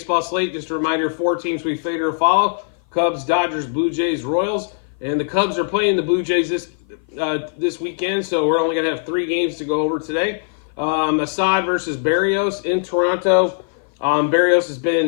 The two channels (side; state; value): right; silent; 56 dB below the other